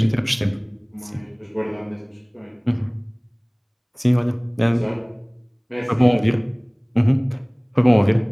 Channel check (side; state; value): both; identical; correlation 1.00